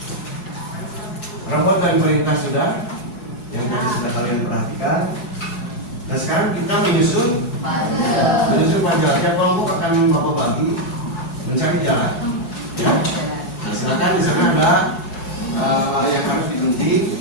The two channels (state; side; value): late; right; 4.7 ms